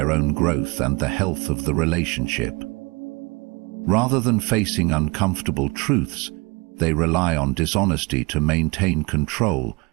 own growth and the health of the relationship. Rather than facing uncomfortable truths, they rely on dishonesty to maintain control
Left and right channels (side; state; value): left; quieter; 27.2 dB